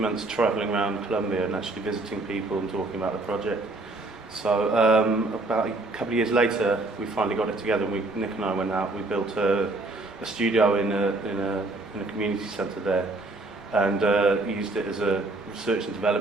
travelling around Colombia and actually visiting people and talking about the project. So about a couple of years later, we finally got it together, and Nick and I went out, we built a studio in a community centre there, and used it as a research and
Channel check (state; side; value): quieter; left; 3.0 dB